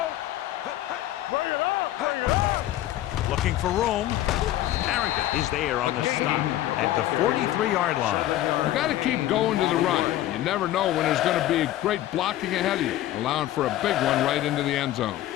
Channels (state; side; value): quieter; right; 14.0 dB